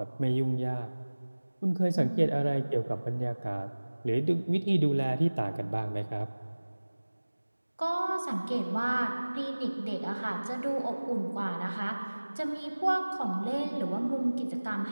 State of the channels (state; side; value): inverted; both; correlation -1.00